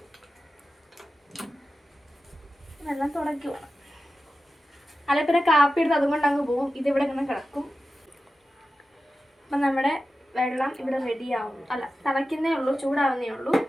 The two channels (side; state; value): both; normal; correlation 0.93